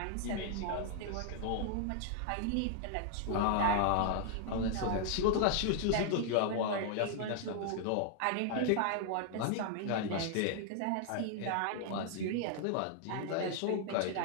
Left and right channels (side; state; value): both; different; correlation -0.01